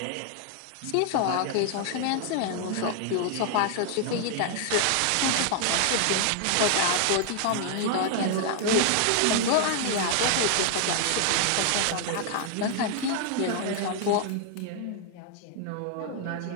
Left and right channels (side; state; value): both; different; correlation 0.00